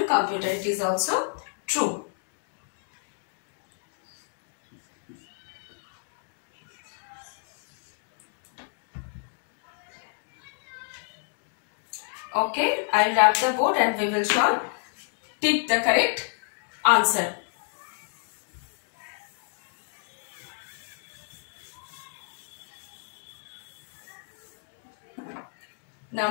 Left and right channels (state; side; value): silent; right; digital silence